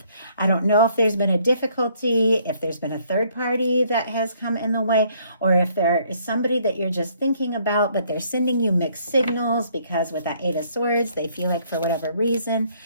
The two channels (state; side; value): inverted; both; correlation -0.65